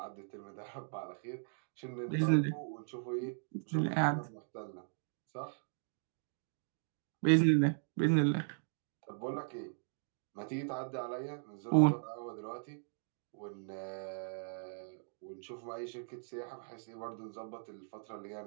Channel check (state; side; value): silent; left; digital silence